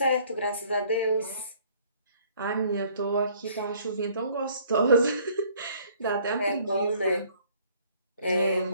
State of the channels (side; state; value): both; inverted; correlation -0.59